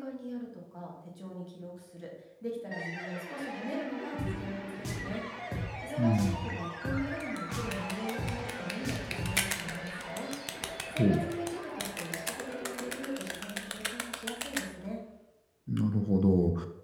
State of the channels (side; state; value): both; identical; correlation 1.00